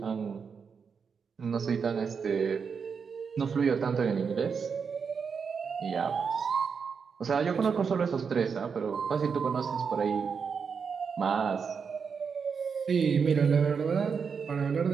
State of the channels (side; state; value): left; quieter; 6.0 dB